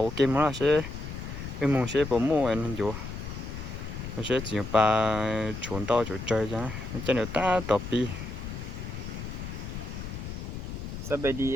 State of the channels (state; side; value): noise; left; rumble, 7 dB below the sound